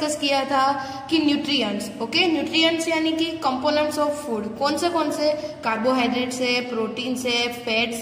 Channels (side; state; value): both; identical; correlation 1.00